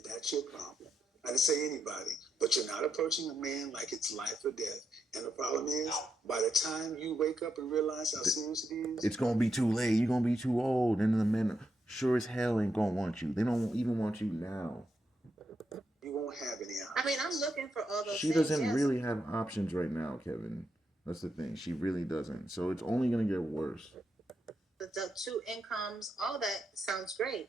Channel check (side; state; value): both; normal; correlation 0.82